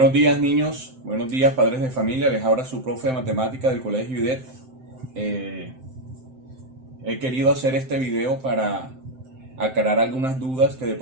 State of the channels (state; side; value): late; left; 7.7 ms